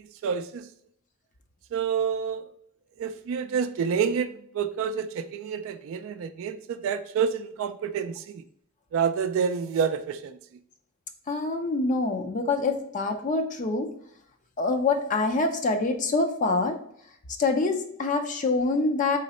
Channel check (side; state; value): both; normal; correlation 0.02